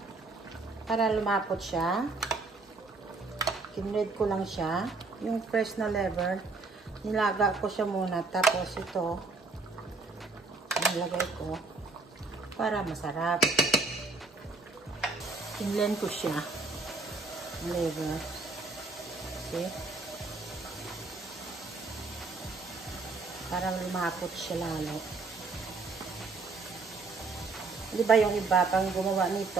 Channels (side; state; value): left; quieter; 3.9 dB